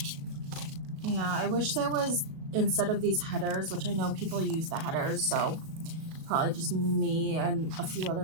instead of these headers, which I know people use the headers, so probably just me and a few other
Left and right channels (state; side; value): late; left; 37 ms